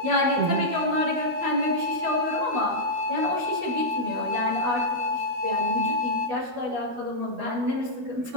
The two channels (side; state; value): left; late; 12 ms